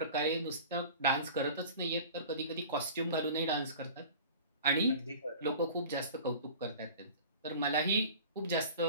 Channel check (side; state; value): both; inverted; correlation -0.40